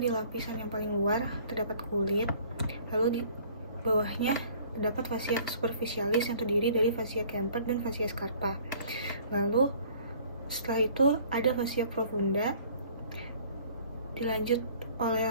lapisan yang paling luar terdapat kulit, lalu di bawahnya terdapat fascia superficialis yang terdiri dari fascia Kemper dan fascia Scarpa. Lalu setelah itu ada fascia profunda, dilanjut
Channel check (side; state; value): both; inverted; correlation -0.54